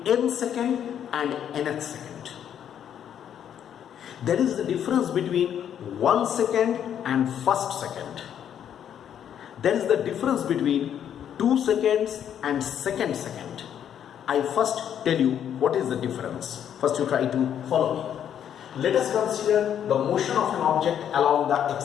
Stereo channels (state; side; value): quieter; right; 9.4 dB